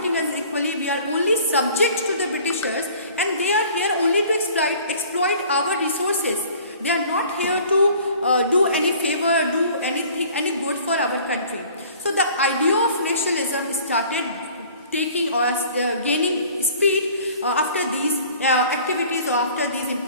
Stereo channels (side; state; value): both; inverted; correlation -0.50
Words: us equally. We are only subject to the Britishers, and they are here only to exploit our resources. They are not here to do any favor, do any good for our country. So the idea of nationalism started taking or gaining speed after these activities or after these